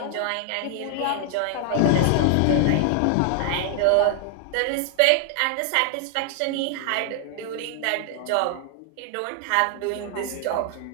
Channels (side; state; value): both; different; correlation 0.00